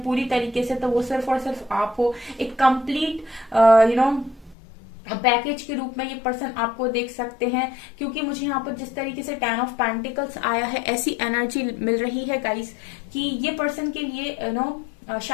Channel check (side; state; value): right; drops out; at 4.5 s